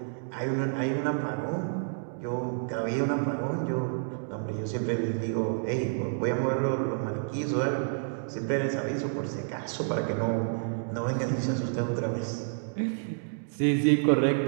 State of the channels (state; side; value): silent; left; digital silence